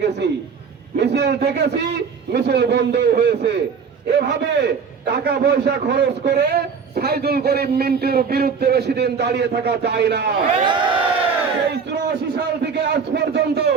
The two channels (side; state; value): left; quieter; 5.9 dB